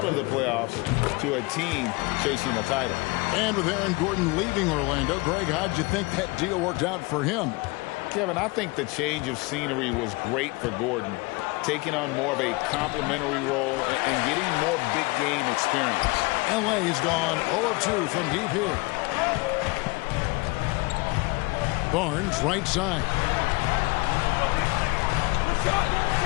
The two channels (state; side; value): quieter; right; 25.5 dB